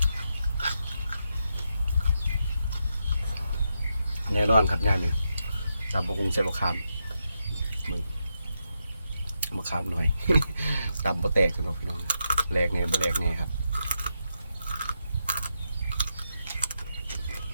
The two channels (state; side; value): inverted; both; correlation -0.85